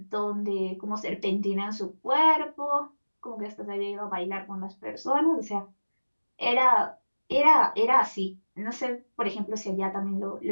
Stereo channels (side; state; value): both; inverted; correlation -1.00